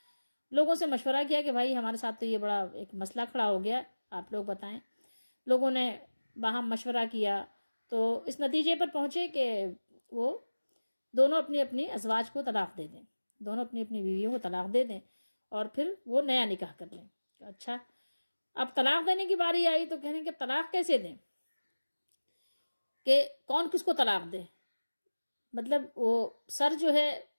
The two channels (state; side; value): inverted; both; correlation -1.00